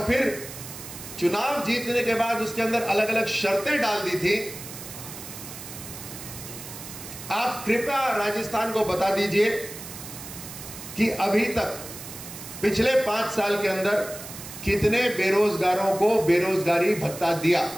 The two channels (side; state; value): right; noise; hiss, 12 dB below the sound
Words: फिर चुनाव जीतने के बाद उसके अंदर अलग अलग शर्तें डाल दी थी। आप कृपया राजस्थान को बता दीजिए कि अभी तक पिछले 5 साल के अंदर कितने बेरोजगारों को बेरोजगारी भत्ता दिया।